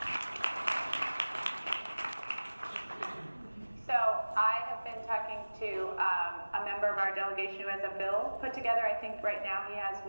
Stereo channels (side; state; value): both; inverted; correlation -1.00